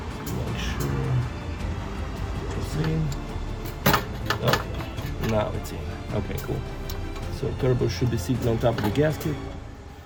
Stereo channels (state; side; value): identical; both; correlation 1.00